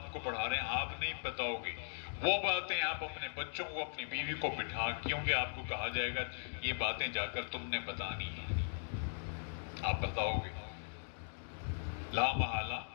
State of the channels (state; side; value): silent; right; digital silence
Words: کو پڑھا رہے ہیں، آپ نہیں بتاؤ گے وہ باتیں، آپ اپنے بچوں کو اپنی بیوی کو بٹھا، کیونکہ آپ کو کہا جائے گا یہ باتیں جا کر تم نے بتانی ہیں، آپ بتاؤ گے، لا محالہ